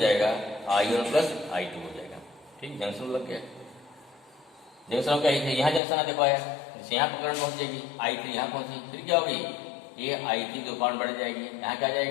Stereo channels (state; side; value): drops out; right; at 5.8 s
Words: I1 प्लस I2 हो जाएगा। ठीक, जंक्शन लग गया। जंक्शन क्या है, यहाँ जंक्शन देखो आया, जैसे यहाँ पर करंट पहुंच जाएगी I3 यहाँ पहुंची, फिर क्या होगी, ये I3 दो पार्ट बढ़ जाएगी, यहाँ क्या